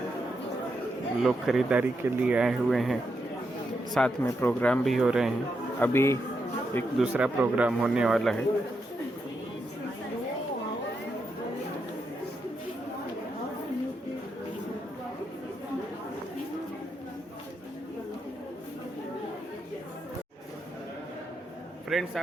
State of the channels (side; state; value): both; normal; correlation 0.83